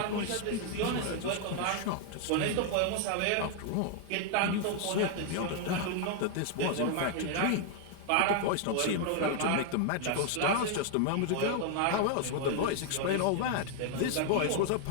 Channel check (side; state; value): both; different; correlation 0.00